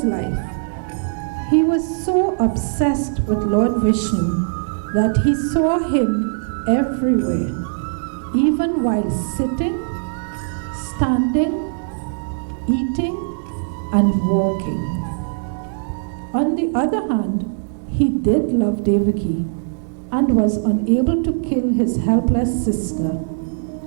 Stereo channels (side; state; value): left; silent; digital silence